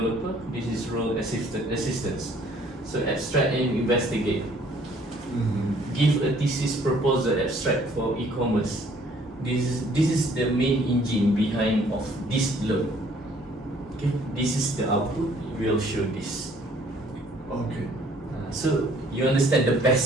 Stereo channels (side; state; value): both; normal; correlation 0.59